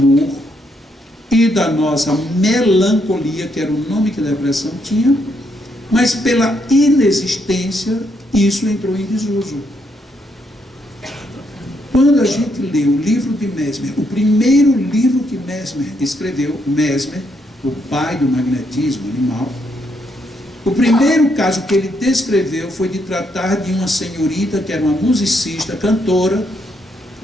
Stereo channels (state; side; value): normal; both; correlation 0.76